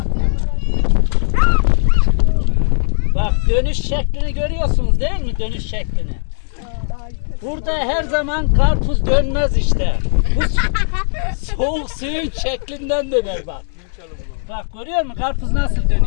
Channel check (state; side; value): silent; right; digital silence